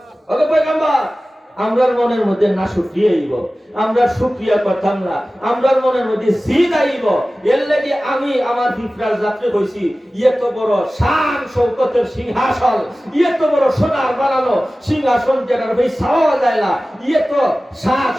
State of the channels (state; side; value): normal; both; correlation 0.96